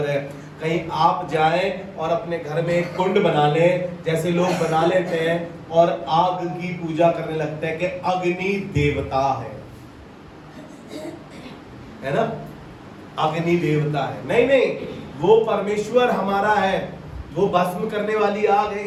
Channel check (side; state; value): both; identical; correlation 1.00